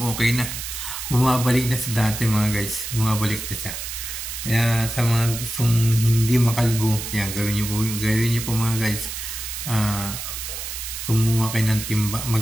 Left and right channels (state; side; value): noise; right; hiss, 7 dB below the sound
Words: na. Bumabalik na sa dati mga guys, bumabalik na siya. Kaya sa mga gustong hindi makalbo, yan, gawin niyo po mga guys. Kumuha kayo ng timba,